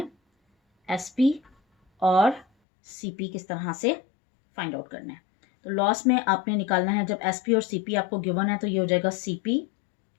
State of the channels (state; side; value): drops out; right; at 2.5 s